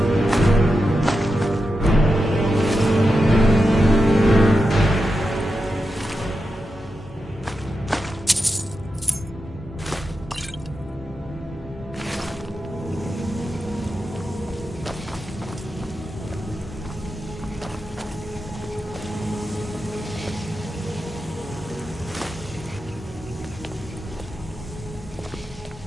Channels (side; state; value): both; normal; correlation 0.88